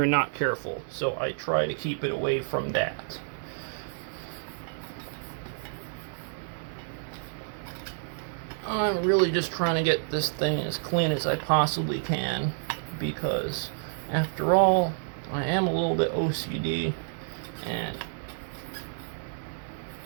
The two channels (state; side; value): silent; left; digital silence